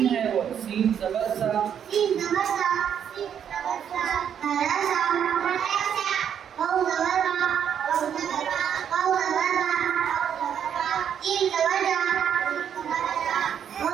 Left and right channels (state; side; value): quieter; left; 8.6 dB